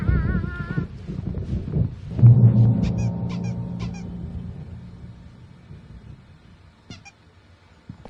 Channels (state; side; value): identical; both; correlation 1.00